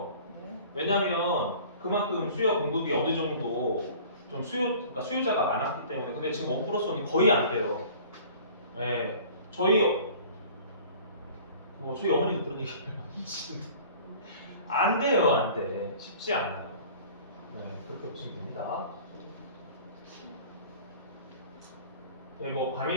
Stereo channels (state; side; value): inverted; both; correlation -0.46